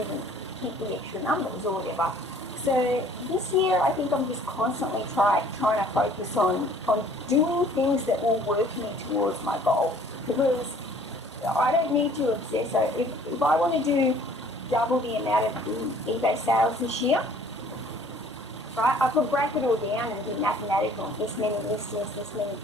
hit the extra numbers or whatever. So this year, I think I'm just constantly trying to focus on doing things that will work me towards my goal, because I don't need to obsess. So if I want to do double the amount of eBay sales this year, right, I could break it all down and do mathematical, this many listings, this many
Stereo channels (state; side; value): normal; both; correlation 0.54